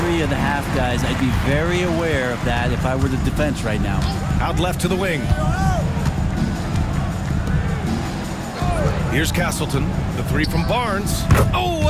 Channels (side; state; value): both; identical; correlation 1.00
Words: of the half, guys. I'd be very aware of that if I were the defense right now. Out left to the wing. Here's Castleton. The three from Barnes. Oh,